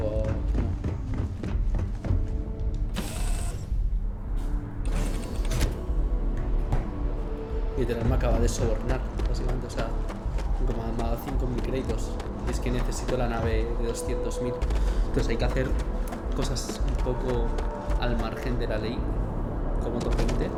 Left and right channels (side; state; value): both; identical; correlation 1.00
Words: que no. Literal me acaba de sobornar, básicamente, o sea, como me ha dado 5.000 créditos. Y es que necesito la nave de 200.000. Entonces hay que hacer cosas un poco al margen de la ley, como otra gente.